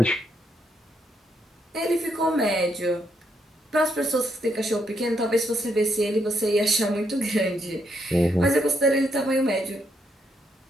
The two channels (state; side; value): normal; both; correlation 0.76